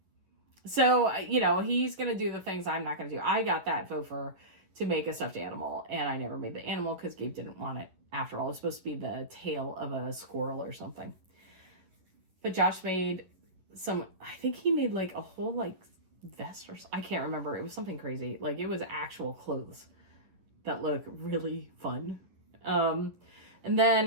So, he's going to do the things I'm not going to do. I got that faux fur to make a stuffed animal, and I never made the animal because Gabe didn't want it. After all, it was supposed to be the tail of a squirrel or something. But Josh made I think he made like a whole like vest or I can't remember. It was something crazy. Like it was actual clothes that look really fun. And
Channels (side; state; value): left; late; 11 ms